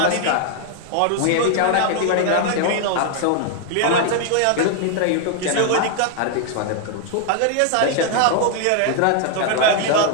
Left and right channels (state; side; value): different; both; correlation 0.00